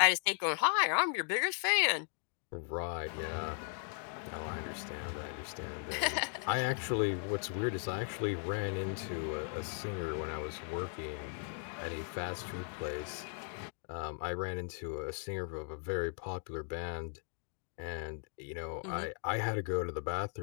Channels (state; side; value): silent; right; 53 dB below the other